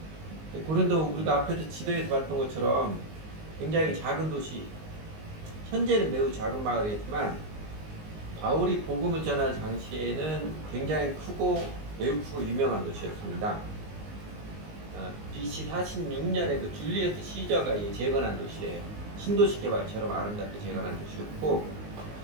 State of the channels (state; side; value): late; left; 19 ms